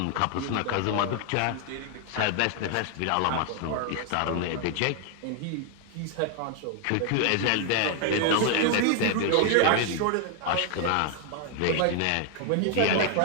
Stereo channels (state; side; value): different; both; correlation 0.00